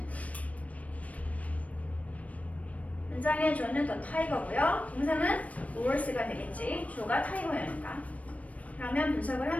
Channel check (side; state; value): right; late; 0.068 ms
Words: 문장의 주어는 더 타이거고요. 동사는 horse가 되겠지. 주어가 타이거니까. 그러면 분석을